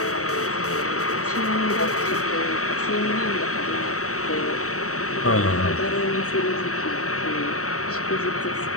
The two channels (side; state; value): right; late; 0.65 ms